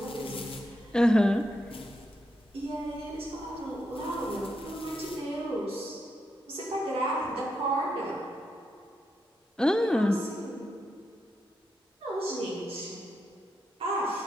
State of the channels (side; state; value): both; normal; correlation 0.83